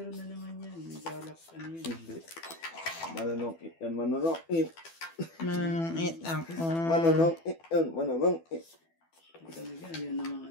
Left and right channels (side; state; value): right; late; 12 ms